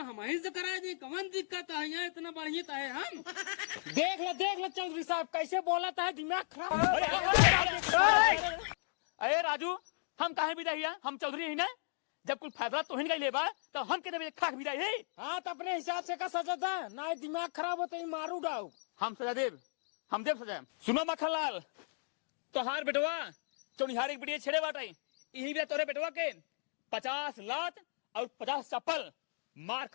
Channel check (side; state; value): right; silent; digital silence